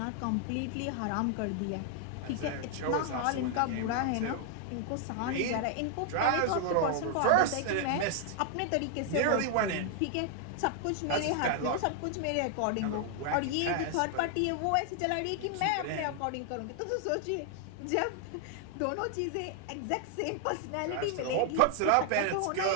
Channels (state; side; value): different; both; correlation 0.00